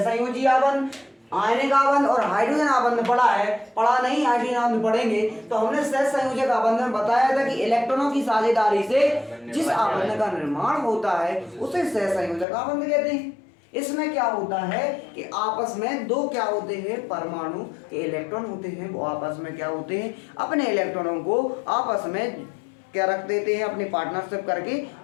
आबंध, आयनिक आबंध और हाइड्रोजन आबंध पढ़ा है। पढ़ा नहीं, हाइड्रोजन आबंध पढ़ेंगे। तो हमने सहसंयोजक आबंध में बताया था कि इलेक्ट्रॉनों की साझेदारी से जिस आबंध का निर्माण होता है उसे सहसंयोजक आबंध कहते हैं। इसमें क्या होता है कि आपस में दो क्या होते हैं, परमाणु के इलेक्ट्रॉन होते हैं, वो आपस में क्या होते हैं, अपने इलेक्ट्रॉनों को आपस में क्या रख देते हैं, अपनी पार्टनरशिप करके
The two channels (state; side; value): drops out; right; at 12.5 s